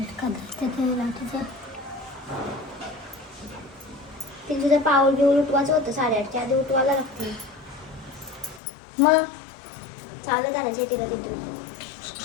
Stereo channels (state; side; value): drops out; right; at 8.6 s